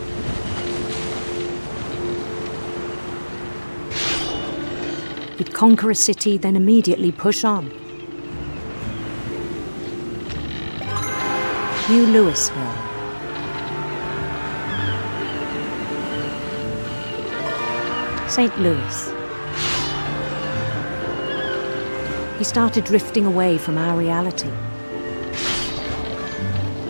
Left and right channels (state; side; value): inverted; both; correlation -1.00